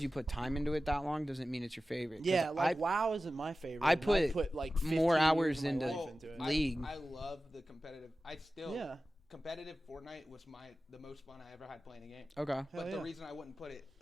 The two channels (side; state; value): both; normal; correlation 0.95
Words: you put time into it that long doesn't mean it's your favorite. 'Cause Yeah, like I, WoW isn't my favorite. I and put like more 15 hours years of my into life well, into it. League. I love the competitive. I still Yeah. competitive Fortnite was the most fun I ever had playing a game. okay. Hell But yeah. the reason I wouldn't put it,